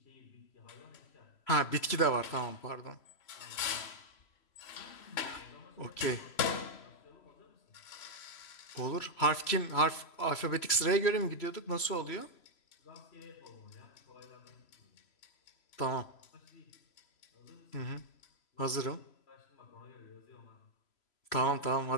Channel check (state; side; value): late; right; 3.0 ms